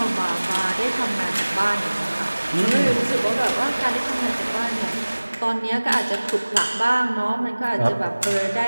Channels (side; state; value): both; inverted; correlation -1.00